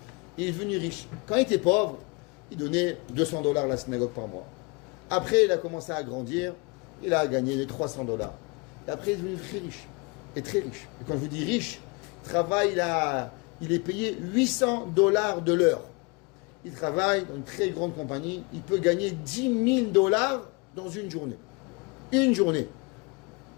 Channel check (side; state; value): right; quieter; 29.0 dB